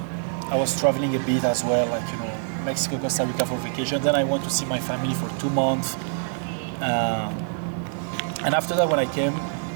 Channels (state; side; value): silent; left; digital silence